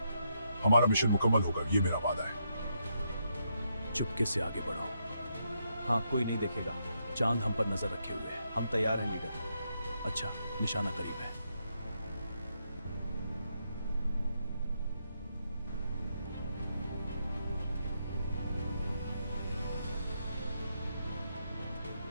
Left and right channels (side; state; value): both; inverted; correlation -0.79